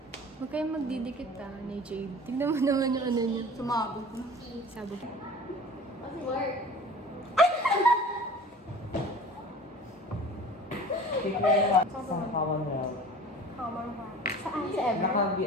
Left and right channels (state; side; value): normal; both; correlation 0.42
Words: Huwag kayong magdidikit ni Jade. Tignan mo naman yung ano niya. Sumabog na. Sabog. Sa Commonwealth. Saan? Sa Ever?